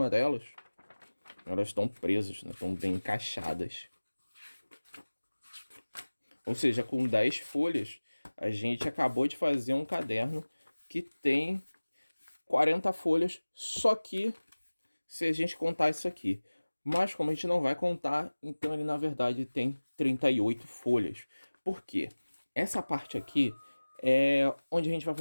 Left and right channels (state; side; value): inverted; both; correlation -1.00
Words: delas. Elas estão presas, né? Estão bem encaixadas. Ou seja, com 10 folhas, a gente acabou de fazer um caderno que tem 40 folhas, só que se a gente contar isso aqui. Mas como a gente não vai contar, então ele na verdade tem 38 folhas. Por quê? Essa parte aqui é onde a gente vai